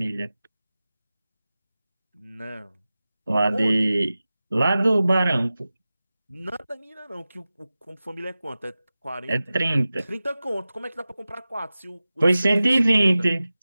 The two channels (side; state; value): both; inverted; correlation -0.96